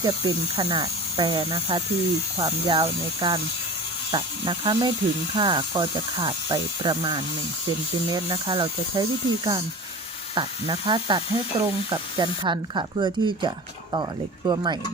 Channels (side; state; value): both; normal; correlation 0.35